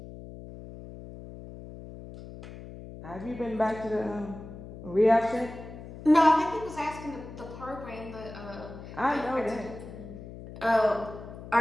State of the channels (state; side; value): noise; left; hum, 13 dB below the sound